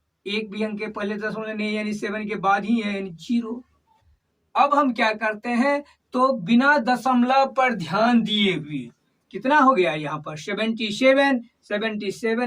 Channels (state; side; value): identical; both; correlation 1.00